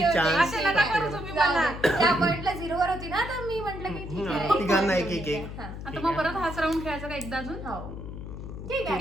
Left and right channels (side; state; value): left; noise; hum, 9 dB below the sound